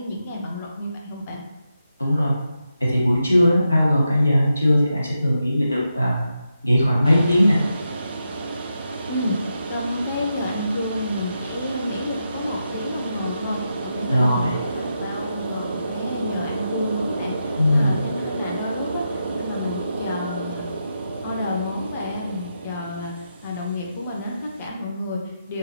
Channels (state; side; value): inverted; both; correlation -0.86